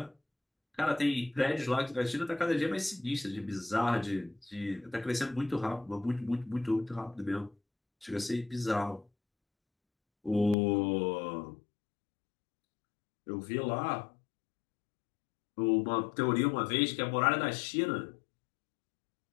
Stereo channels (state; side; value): drops out; right; at 10.6 s